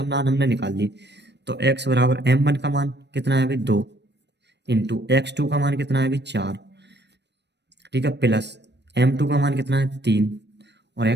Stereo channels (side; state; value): left; late; 0.50 ms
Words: मान हमने निकाल लिए। तो x बराबर m1 का मान कितना है भाई 2 इंटू x2 का मान कितना है भाई 4, ठीक है, प्लस m2 का मान कितना है 3 और